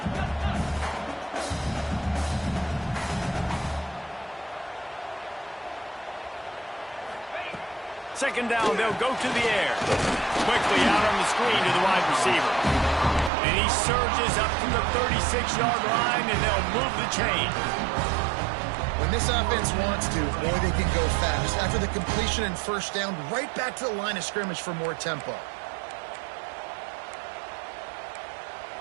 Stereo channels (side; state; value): left; drops out; at 13.3 s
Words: Second down, they'll go to the air. Quickly out on the screen to the wide receiver. And he surges up to the 36-yard line, and they'll move the chain. When this offense wants to, boy, they can go fast. After the completion and first down, right back to the line of scrimmage for more tempo.